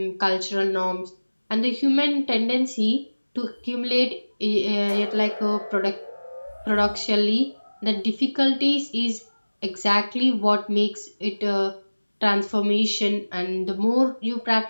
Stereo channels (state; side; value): inverted; both; correlation -1.00